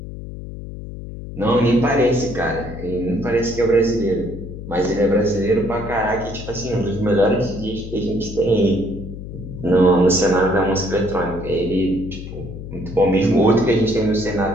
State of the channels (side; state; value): left; noise; hum, 11 dB below the sound